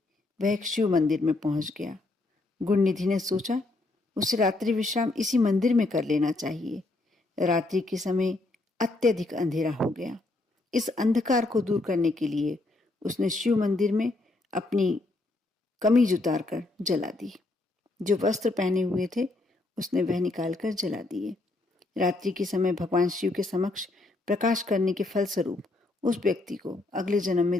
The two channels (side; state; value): right; quieter; 3.0 dB